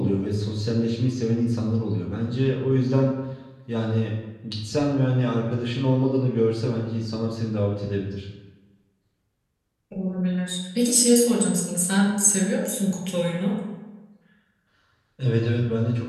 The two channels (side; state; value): both; identical; correlation 1.00